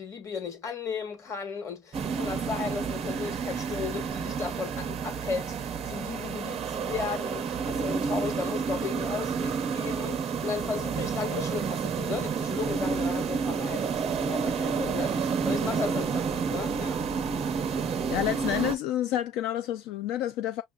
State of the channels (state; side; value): normal; both; correlation 0.60